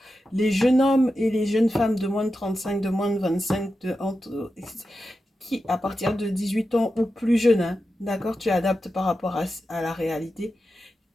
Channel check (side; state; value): both; normal; correlation 0.90